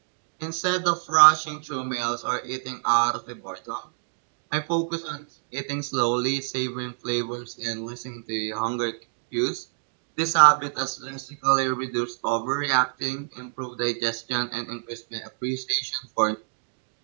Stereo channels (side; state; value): left; silent; digital silence